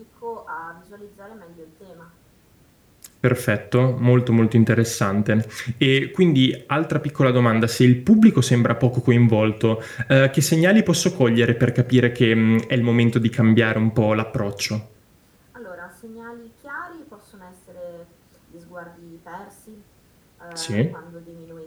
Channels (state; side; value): identical; both; correlation 1.00